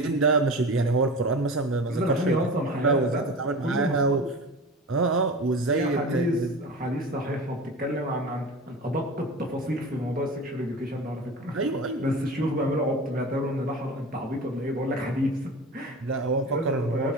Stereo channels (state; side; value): normal; both; correlation 0.32